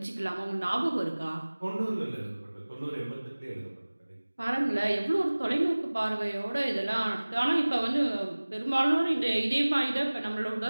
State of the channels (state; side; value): inverted; both; correlation -1.00